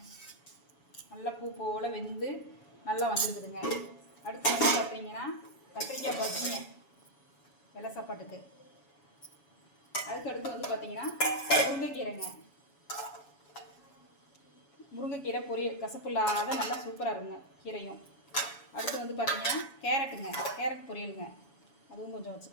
நல்லா பூ போல் வெந்து நல்லா வந்துருக்குதுங்க. அடுத்து வந்து பார்த்தீங்கன்னா கத்திரிக்காய் பஜ்ஜிங்க வெள்ளை சாப்பாட்டுக்கு. அதுக்கு அடுத்து வந்து பார்த்தீங்கன்னா முருங்கைக்கீரைங்க. முருங்கைக்கீரை பொரியல் கசப்பு இல்லாத நல்லா சூப்பராக இருக்குங்க கீரையும். அடுத்து வந்து பார்த்தீங்கன்னா கேரட்டுங்க, கேரட் பொரியலுங்க. அதுவும் கொஞ்சம்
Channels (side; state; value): right; late; 7.1 ms